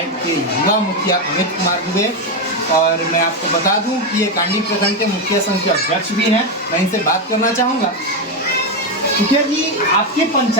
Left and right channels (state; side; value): normal; both; correlation 0.08